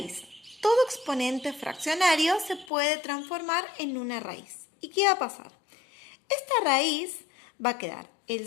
Todo exponente fraccionario se puede transformar en una raíz. ¿Y qué va a pasar? Esta raíz va a quedar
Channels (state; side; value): drops out; right; at 2.7 s